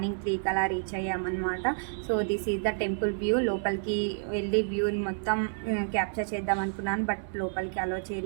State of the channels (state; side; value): silent; left; digital silence